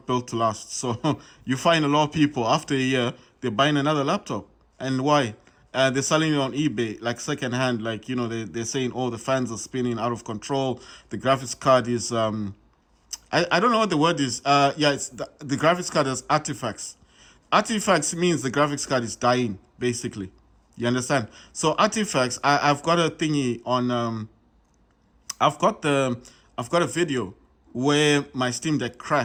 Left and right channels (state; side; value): identical; both; correlation 1.00